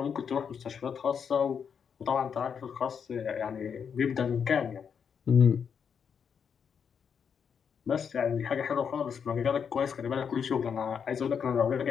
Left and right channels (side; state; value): right; quieter; 7.0 dB